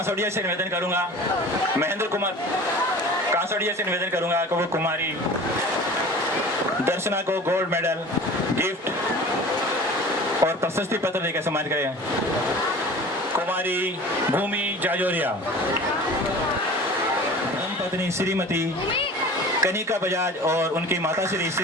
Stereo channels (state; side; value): normal; both; correlation 0.40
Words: से निवेदन करूंगा, महेंद्र कुमार कांसोड़िया से निवेदन करूंगा कि वो कुमारी दर्शना को गोल्ड मेडल, गिफ्ट और प्रशस्ति पत्र देकर सम्मानित करें। कुमारी भूमि जाजोरिया, धर्मपत्नी श्रीमती कनिका बजाज और उनकी माता श्री